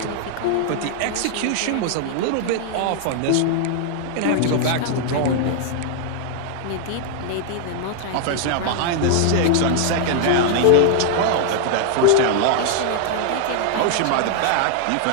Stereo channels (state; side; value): different; both; correlation 0.00